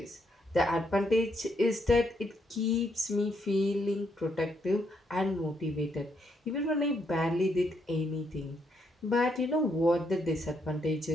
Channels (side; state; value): both; normal; correlation 0.76